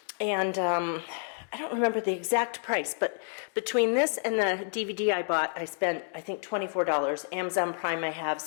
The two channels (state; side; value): silent; right; digital silence